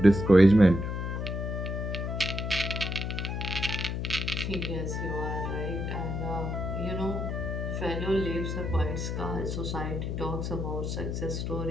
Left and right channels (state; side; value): noise; left; hum, 2 dB below the sound